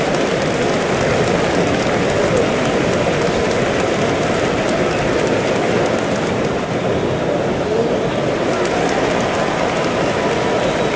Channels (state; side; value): identical; both; correlation 1.00